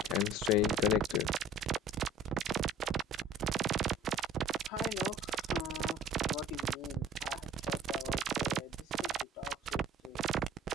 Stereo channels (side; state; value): both; normal; correlation 0.46